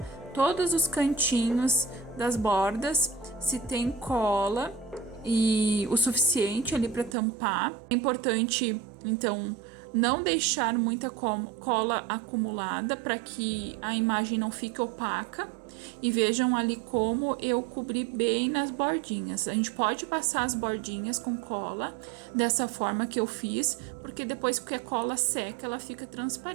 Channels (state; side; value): drops out; left; at 7.2 s